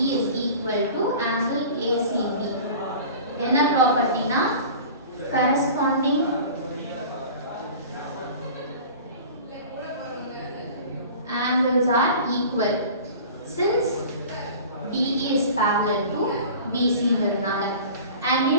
is equal to angle ACB. என்ன ப்ராப்பர்ட்டினா corresponding angles are equal since DE is parallel to BC ன்றதுனால. and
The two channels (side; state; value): both; inverted; correlation -0.40